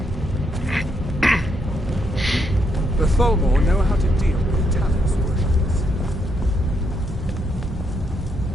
The Tholmor know how to deal with Talos worshippers.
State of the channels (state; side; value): normal; both; correlation 0.77